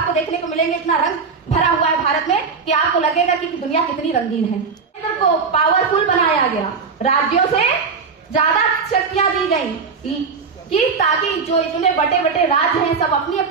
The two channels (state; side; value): quieter; left; 5.2 dB